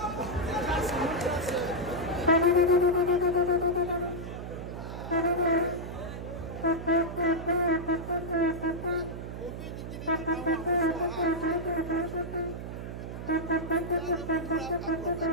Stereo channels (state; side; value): noise; right; hum, 8 dB below the sound